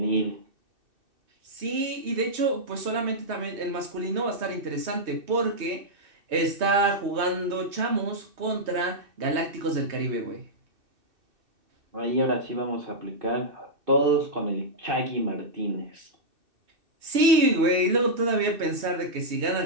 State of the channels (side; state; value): left; late; 2.6 ms